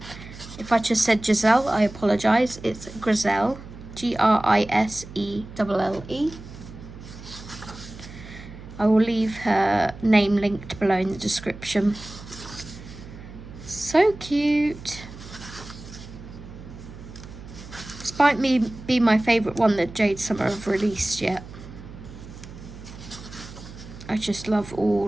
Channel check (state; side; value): noise; right; hum, 15 dB below the sound